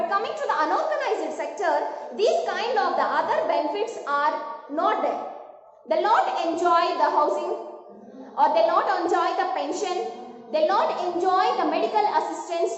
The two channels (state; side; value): identical; both; correlation 1.00